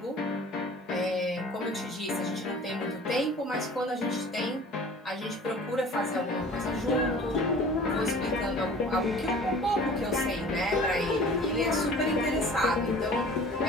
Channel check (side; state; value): both; normal; correlation 0.45